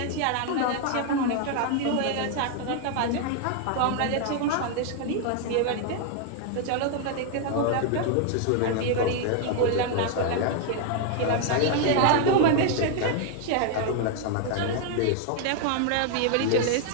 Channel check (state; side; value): different; both; correlation 0.00